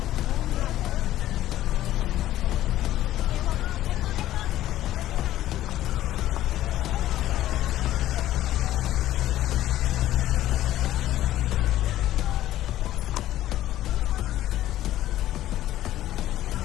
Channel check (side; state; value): right; quieter; 13.8 dB